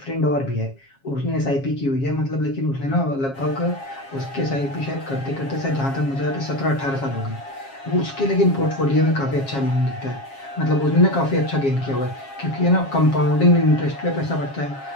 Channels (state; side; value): late; right; 7.3 ms